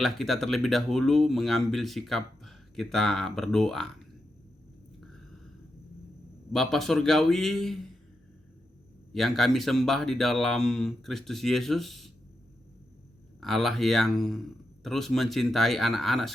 kita terlebih dahulu mengambil sikap kita berdoa. Bapa Surgawi yang kami sembah di dalam Kristus Yesus, Allah yang terus mencintai anak-anak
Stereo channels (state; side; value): normal; both; correlation 0.86